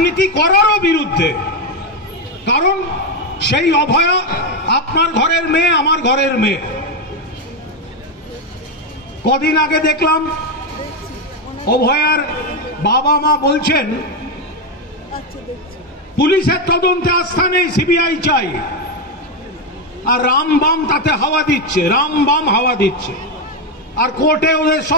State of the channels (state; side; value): normal; both; correlation 0.08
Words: করারও বিরুদ্ধে। কারণ সেই অভয়া আপনার ঘরের মেয়ে, আমার ঘরের মেয়ে। কদিন আগে দেখলাম অভয়ার বাবা মা বলছেন পুলিশের তদন্তে আস্থা নেই, সিবিআই চাই। আর রামবাম তাতে হাওয়া দিচ্ছে, রামবাম হাওয়া দিচ্ছে। আর কোর্টে ওদের